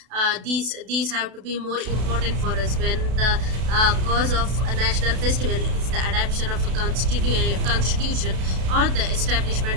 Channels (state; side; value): late; left; 32 ms